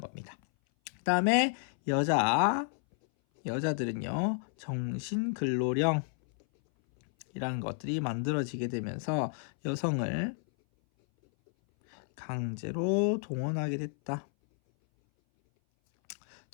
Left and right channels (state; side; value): silent; right; 57 dB below the other